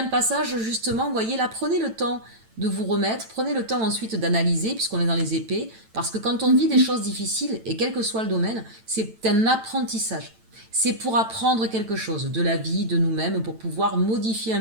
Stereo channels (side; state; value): left; late; 9.0 ms